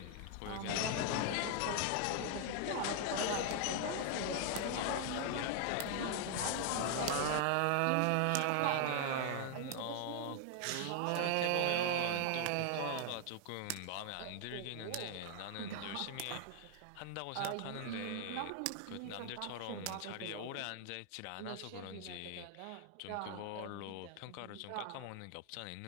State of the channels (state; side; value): different; both; correlation 0.00